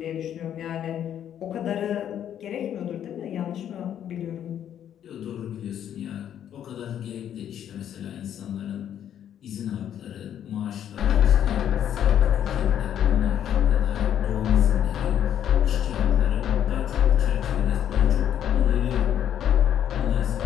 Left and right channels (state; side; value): quieter; right; 10.0 dB